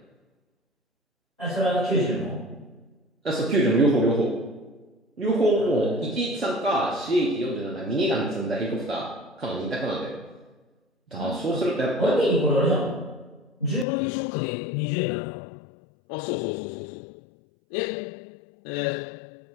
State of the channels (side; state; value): right; drops out; at 13.9 s